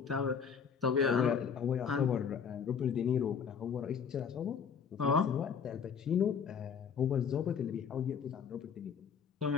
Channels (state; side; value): quieter; right; 6.9 dB